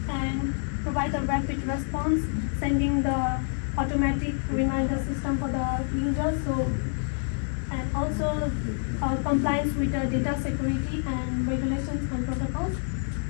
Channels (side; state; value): right; silent; 60 dB below the other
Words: and provide a rapid response, sending the automatic reminder system for the users. So, and also compliance with the data security and regulations and protocols.